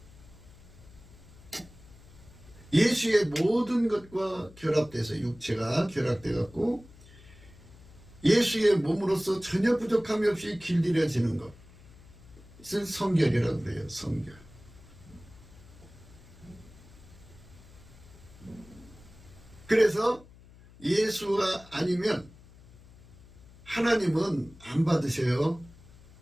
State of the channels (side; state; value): left; noise; hum, 22 dB below the sound